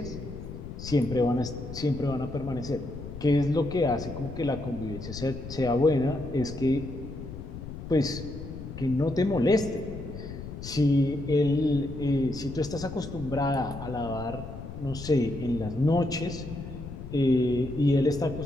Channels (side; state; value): left; noise; rumble, 10 dB below the sound